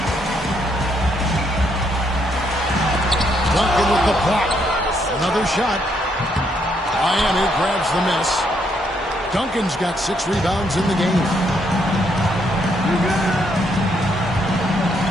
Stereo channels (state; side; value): normal; both; correlation 0.74